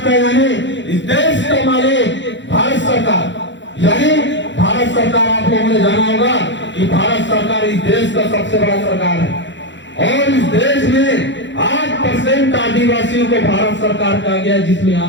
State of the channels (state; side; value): late; right; 0.53 ms